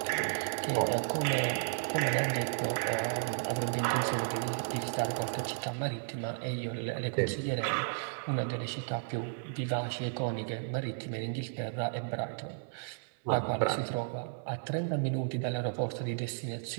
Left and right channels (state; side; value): silent; left; 55 dB below the other